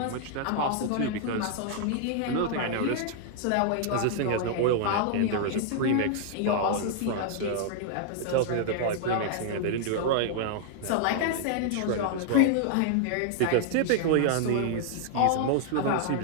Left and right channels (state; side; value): different; both; correlation -0.01